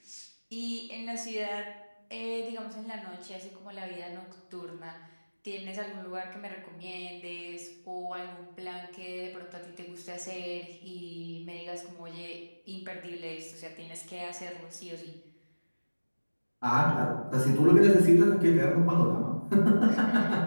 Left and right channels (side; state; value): both; inverted; correlation -1.00